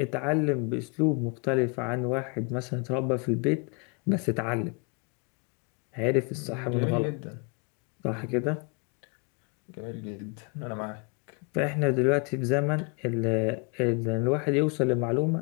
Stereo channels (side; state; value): right; quieter; 33.9 dB